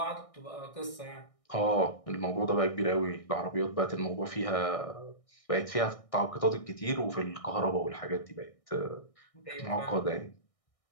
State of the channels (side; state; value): right; late; 1.6 ms